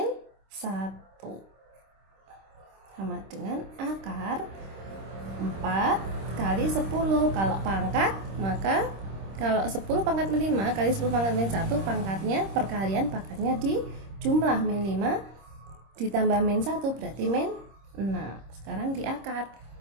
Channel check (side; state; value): left; late; 26 ms